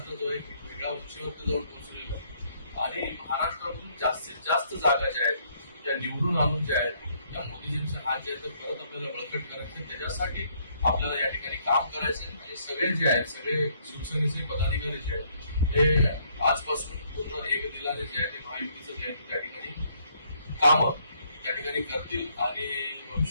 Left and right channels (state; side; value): inverted; both; correlation -0.67